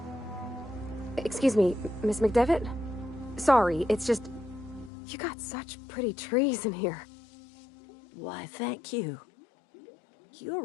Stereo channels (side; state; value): right; drops out; at 4.9 s